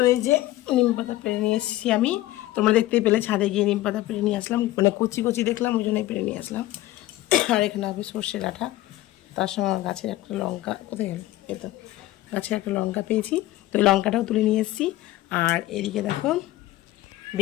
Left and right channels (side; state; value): right; quieter; 16.2 dB